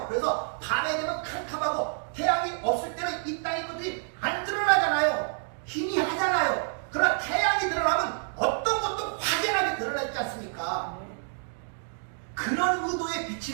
그래서 밤에 되면 캄캄하고 태양이 없을 때는 이 땅의 것들이 안 드러나잖아요. 희미하잖아요. 그러나 태양이 드러나면 어떤 것도 확연하게 드러나지 않습니까? 그런 의도의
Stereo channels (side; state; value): left; silent; 59 dB below the other